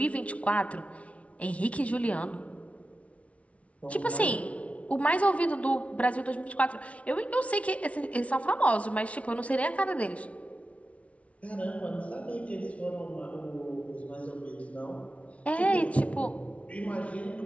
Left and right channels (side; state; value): right; late; 0.064 ms